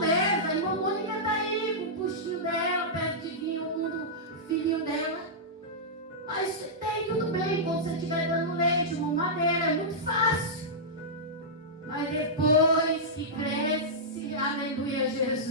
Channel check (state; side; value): normal; both; correlation -0.12